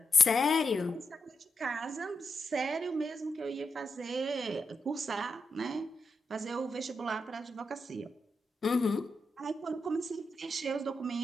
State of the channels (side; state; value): both; normal; correlation 0.84